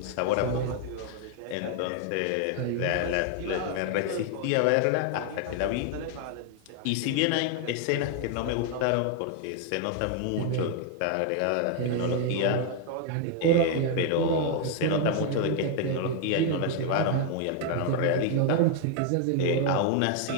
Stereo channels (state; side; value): different; both; correlation 0.00